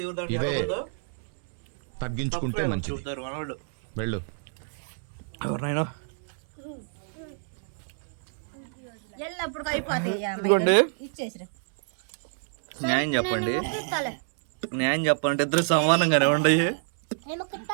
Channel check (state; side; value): silent; left; 60 dB below the other